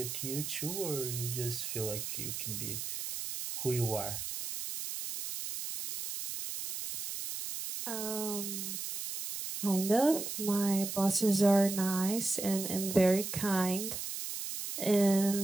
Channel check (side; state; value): right; noise; hiss, 6 dB below the sound